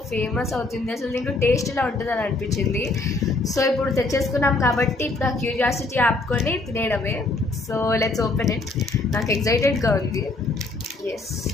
ఫేమస్ అవుతుంది, అసలు దీంట్లో టేస్ట్ ఇలా ఉంటుందని అనిపించింది. సో ఇప్పుడు తెచ్చేసుకున్నాం కాబట్టి ఇప్పుడు ఆ క్యూరియాసిటీ ఆపుకొని తినేయడమే. So let's open it. నాకు ఎక్సైటెడ్గా ఉంది. ఎస్.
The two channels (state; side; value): quieter; right; 3.2 dB